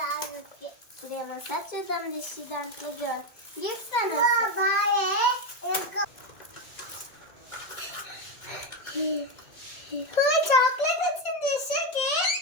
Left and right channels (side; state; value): right; late; 2.2 ms